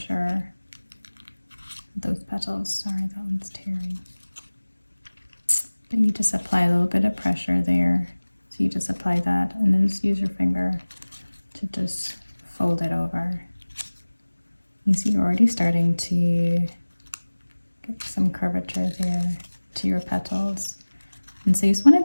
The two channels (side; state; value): both; inverted; correlation -1.00